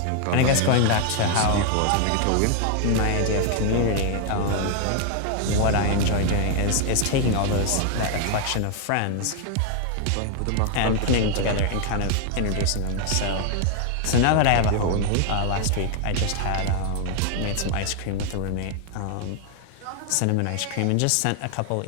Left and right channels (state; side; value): different; both; correlation 0.00